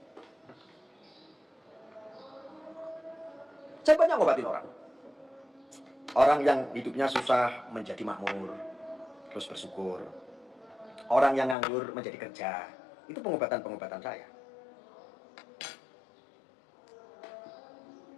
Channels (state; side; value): drops out; right; at 11.6 s